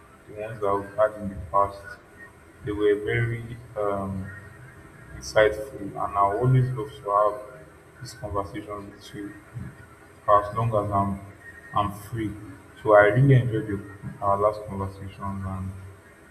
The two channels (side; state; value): both; identical; correlation 1.00